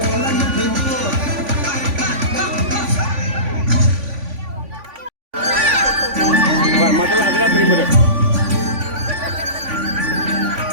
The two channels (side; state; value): left; late; 3.5 ms